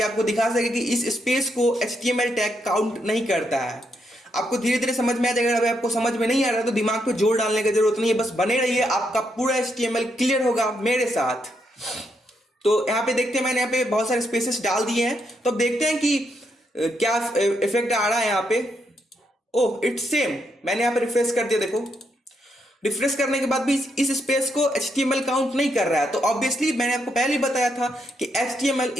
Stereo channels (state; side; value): normal; both; correlation 0.79